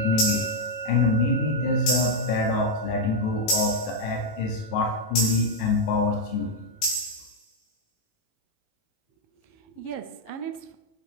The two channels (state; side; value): late; right; 18 ms